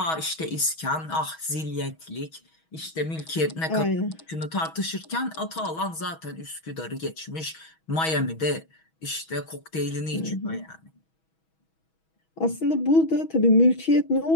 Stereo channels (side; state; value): right; late; 6.2 ms